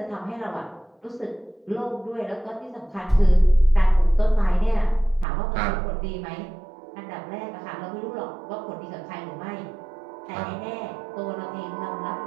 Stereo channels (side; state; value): left; drops out; at 5.2 s